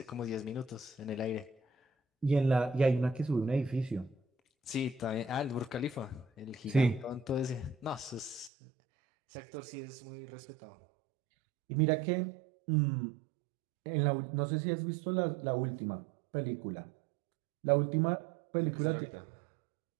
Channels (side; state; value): left; drops out; at 8.5 s